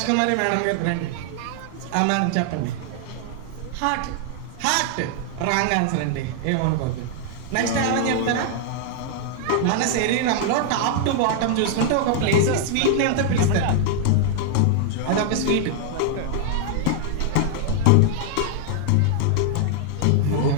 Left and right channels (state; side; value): different; both; correlation 0.00